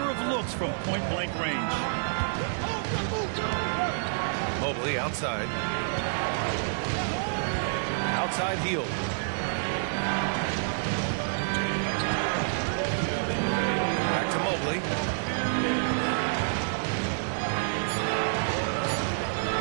of looks from point-blank range. Mobley outside. Outside Hield. Back to Mobley.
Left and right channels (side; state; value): left; silent; digital silence